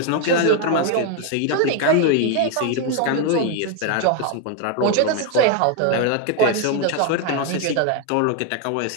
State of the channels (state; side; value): different; both; correlation 0.01